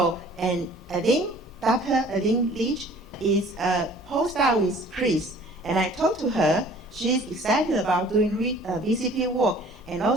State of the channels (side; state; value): both; normal; correlation 0.51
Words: and I think Dr. Leach is a postdoc with Chris. And I talked to her, she's excited about doing VCP work. And